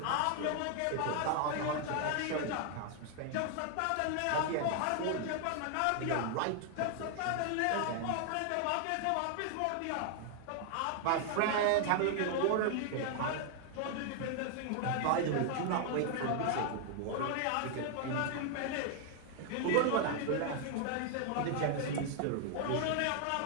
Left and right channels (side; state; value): both; different; correlation 0.00